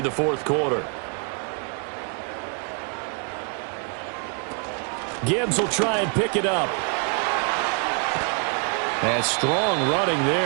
the 4th quarter. Gibbs will try and pick it up. And strong running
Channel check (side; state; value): left; quieter; 38.0 dB